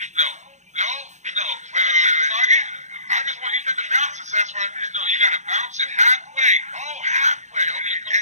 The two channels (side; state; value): left; late; 0.34 ms